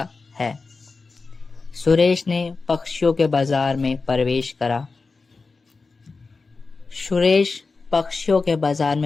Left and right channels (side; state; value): right; quieter; 4.1 dB